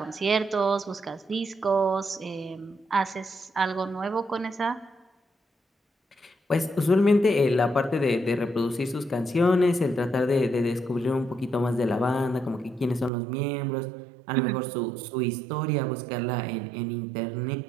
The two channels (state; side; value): drops out; left; at 13.1 s